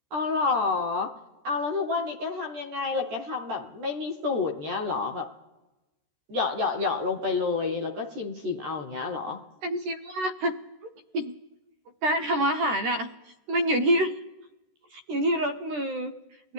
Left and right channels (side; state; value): left; late; 13 ms